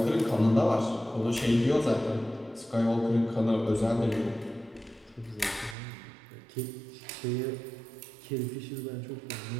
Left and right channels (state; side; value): drops out; left; at 5.8 s